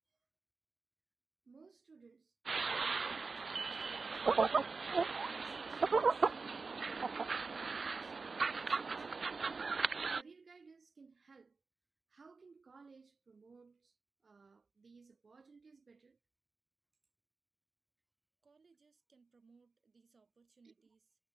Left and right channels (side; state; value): left; quieter; 4.3 dB